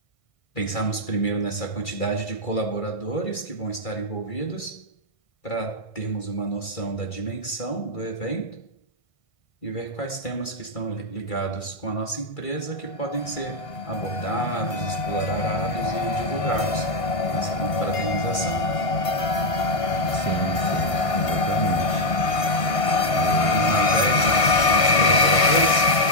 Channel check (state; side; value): late; right; 1.5 ms